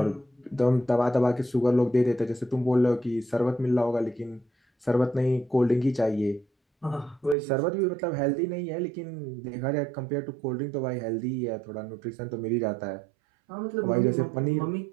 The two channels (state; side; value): drops out; left; at 7.4 s